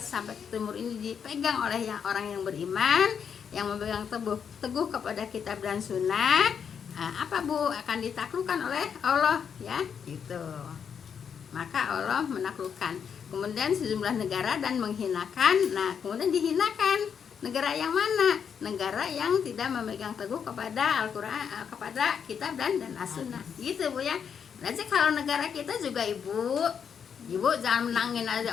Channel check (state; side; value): quieter; right; 7.3 dB